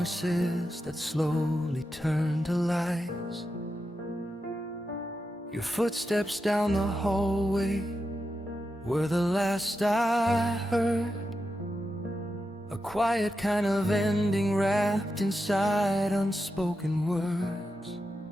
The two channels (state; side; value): normal; both; correlation 0.88